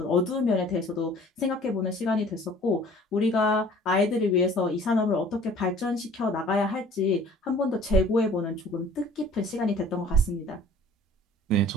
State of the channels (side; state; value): both; normal; correlation 0.50